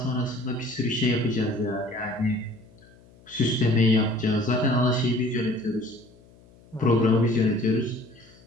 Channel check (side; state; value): left; noise; hum, 26 dB below the sound